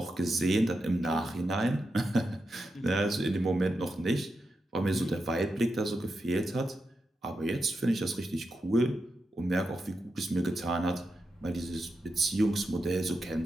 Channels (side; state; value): both; normal; correlation 0.87